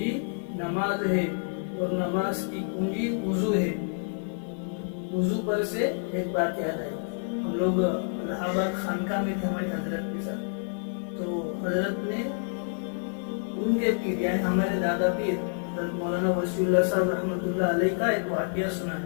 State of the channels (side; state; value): right; silent; 59 dB below the other